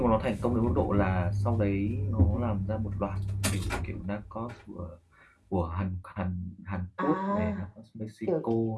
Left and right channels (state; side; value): identical; both; correlation 1.00